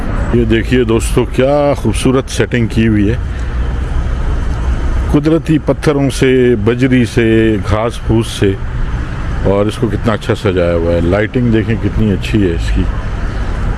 ये देखिए दोस्तों, क्या खूबसूरत सेटिंग की हुई है, कुदरती पत्थरों से, बजरी से, घास फूस से, और इसको कितना अच्छा सजाया हुआ है। लाइटिंग देखें कितनी अच्छी है इसकी,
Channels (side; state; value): both; identical; correlation 1.00